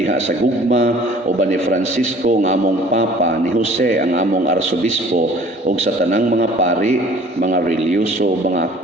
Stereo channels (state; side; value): normal; both; correlation 0.51